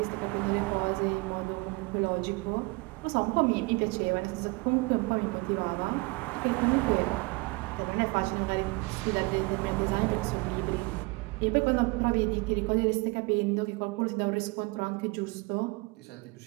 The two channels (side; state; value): left; quieter; 26.4 dB